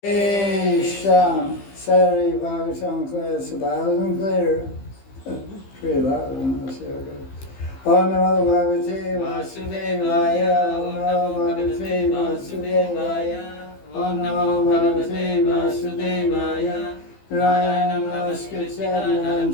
Sham, Saturday Bhagavatam class, loud and clear. Pretty loud, I don't know, see how it goes. Om Namo Bhagavate Vasudevaya, Om Namo Bhagavate Vasudevaya, Om Namo Bhagavate Vasudevaya, Narayanam Namaskritya Naram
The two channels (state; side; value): late; right; 15 ms